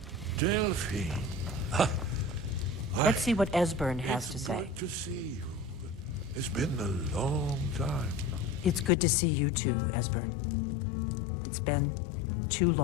Delphine. Let's see what Esbern has to say. Good to see you. It's been a long time. It's good to see you too, Esbern. It's been too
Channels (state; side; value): drops out; right; at 8.9 s